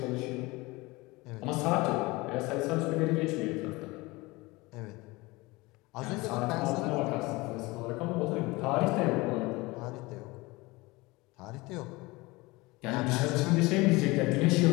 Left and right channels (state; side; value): quieter; right; 22.7 dB